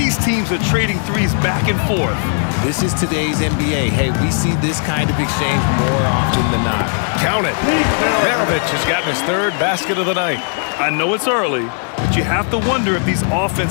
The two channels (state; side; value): silent; right; 55 dB below the other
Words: teams are trading threes back and forth. This is today's NBA. Hey, we see this kind of exchange more often than not. Count it. Maravich has gotten his 3rd basket of the night. I know it's early, but you have to wonder if these